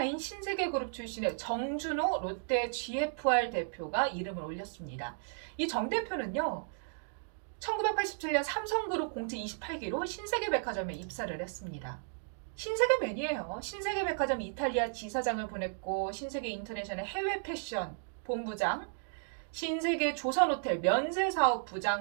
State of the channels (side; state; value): left; silent; digital silence